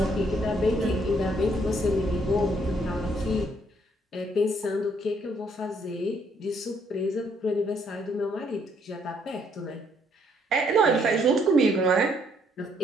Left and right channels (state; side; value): normal; both; correlation 0.69